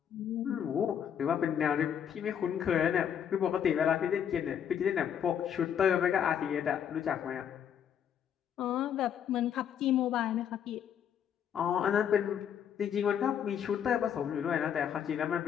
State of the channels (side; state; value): right; quieter; 8.7 dB